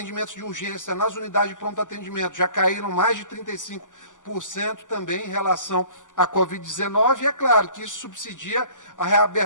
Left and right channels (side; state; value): right; late; 0.87 ms